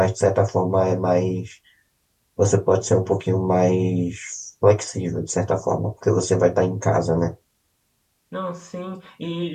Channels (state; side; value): identical; both; correlation 1.00